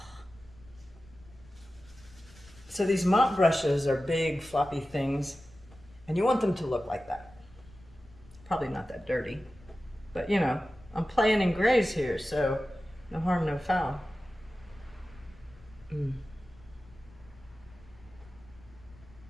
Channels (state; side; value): noise; left; rumble, 24 dB below the sound